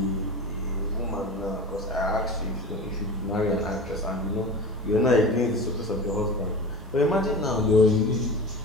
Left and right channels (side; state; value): both; normal; correlation 0.32